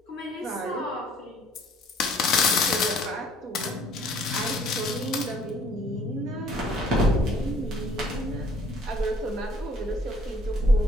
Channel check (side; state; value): both; normal; correlation 0.59